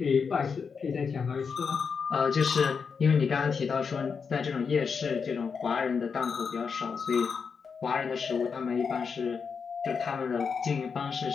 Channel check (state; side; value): quieter; right; 5.8 dB